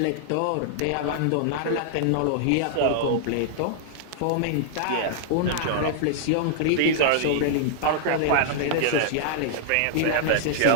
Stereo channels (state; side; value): different; both; correlation -0.01